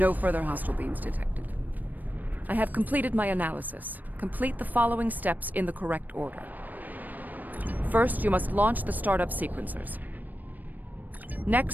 further hostile beams detected. I have completed my analysis. Complete the following steps in the correct order. First, you must launch the startup sequencers.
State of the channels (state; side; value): late; left; 0.085 ms